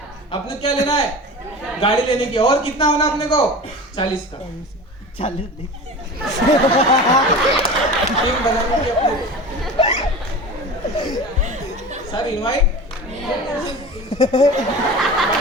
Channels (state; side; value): normal; both; correlation 0.33